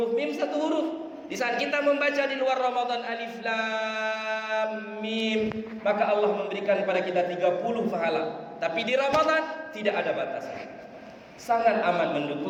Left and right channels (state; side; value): identical; both; correlation 1.00